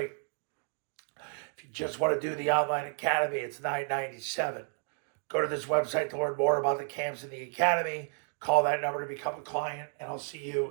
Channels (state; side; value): silent; left; 57 dB below the other